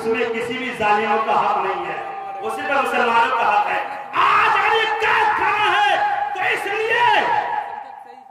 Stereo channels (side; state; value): both; identical; correlation 1.00